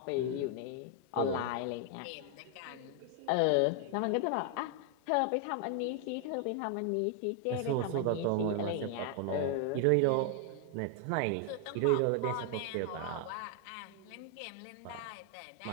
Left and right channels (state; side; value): different; both; correlation 0.00